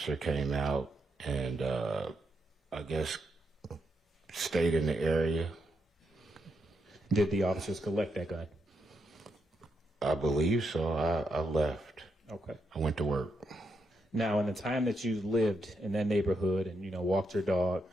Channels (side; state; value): both; normal; correlation 0.81